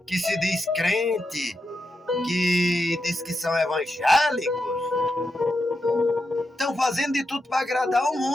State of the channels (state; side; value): normal; both; correlation 0.86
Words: que se diz crente, que diz que são evangélicos, estão fazendo de tudo para agradar o